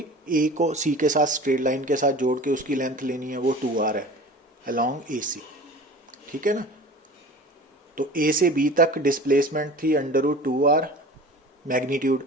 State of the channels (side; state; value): both; normal; correlation 0.39